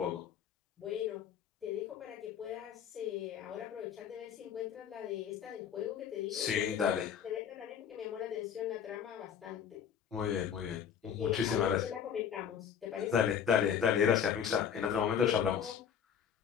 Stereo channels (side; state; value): right; quieter; 8.2 dB